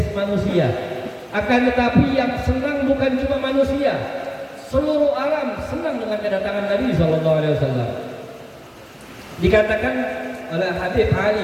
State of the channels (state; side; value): identical; both; correlation 1.00